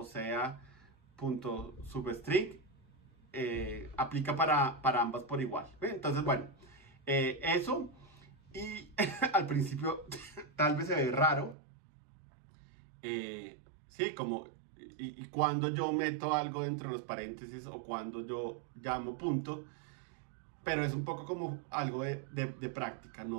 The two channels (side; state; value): left; drops out; at 11.6 s